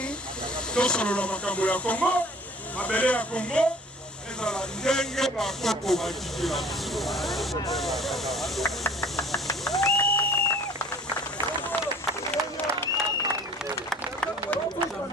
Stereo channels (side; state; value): both; normal; correlation 0.49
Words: tosolola makambo ya Kongo mabele ya Kongo ezala ndenge bakoko batikela